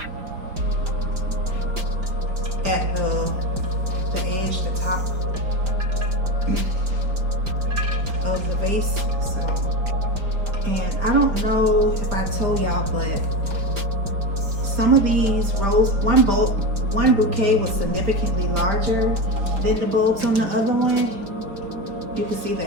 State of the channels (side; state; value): left; late; 5.0 ms